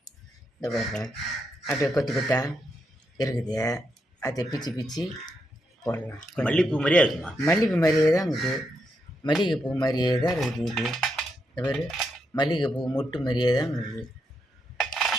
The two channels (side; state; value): both; normal; correlation 0.82